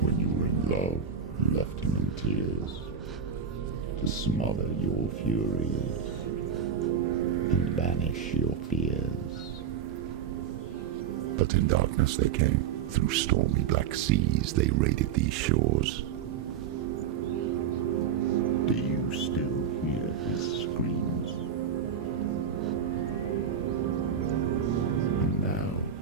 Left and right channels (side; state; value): left; quieter; 7.3 dB